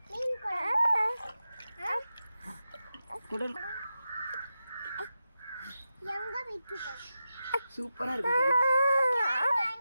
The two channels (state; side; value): inverted; both; correlation -0.91